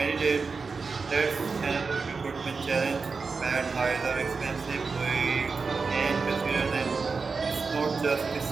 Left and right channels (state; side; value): quieter; left; 4.7 dB